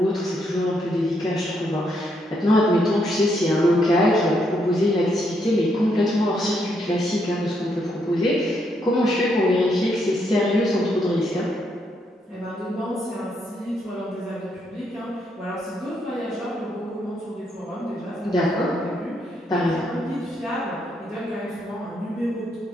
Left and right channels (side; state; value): both; normal; correlation 0.76